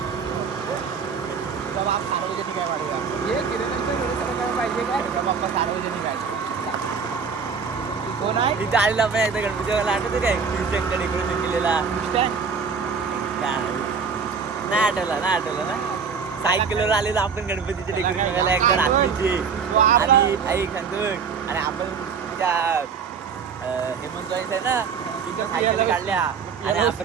तुझा बाप सार्वजनिक आहे वाढवा हे किरणाचे डोळेसर करायला पाहिजे काय तुझा पप्पा सार्वजनिक आहे कोण आहे तिथे आलेला आपण एकदा गणपती आठवतं काय शिवशंकर डेकोरेशन केलेला नाही आठवलं ना सायकलवर आलेलो आपण गणपतीचे डेकोरेशन करायला एकदा रात्रीचे आणि ऐक आणि आपण त्या हेमंत आहे ना तिथे सायकल काढल्या आणि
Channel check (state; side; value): quieter; left; 5.8 dB